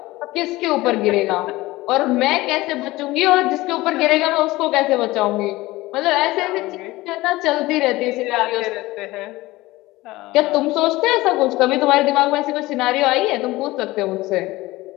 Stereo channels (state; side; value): quieter; right; 19.2 dB